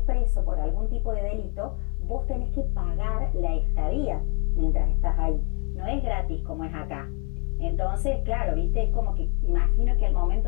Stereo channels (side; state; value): right; quieter; 31.4 dB